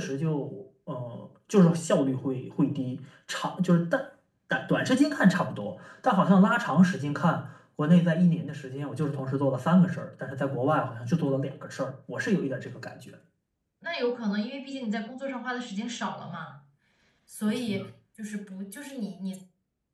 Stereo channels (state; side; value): identical; both; correlation 1.00